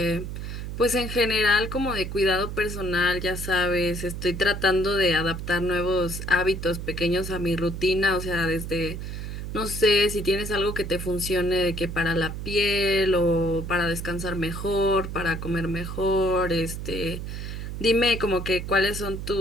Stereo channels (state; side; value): noise; right; hum, 6 dB below the sound